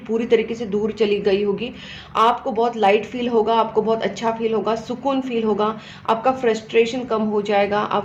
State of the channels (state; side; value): identical; both; correlation 1.00